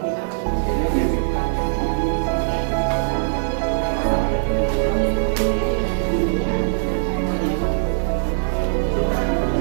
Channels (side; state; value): left; silent; digital silence